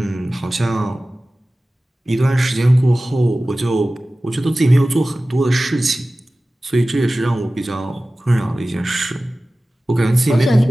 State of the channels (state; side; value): normal; both; correlation 0.96